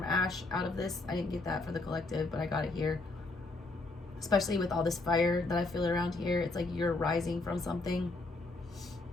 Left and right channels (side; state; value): right; quieter; 3.2 dB